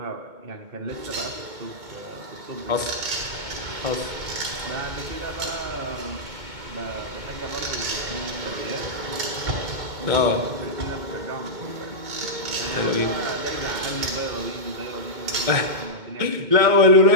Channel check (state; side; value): late; left; 2.2 ms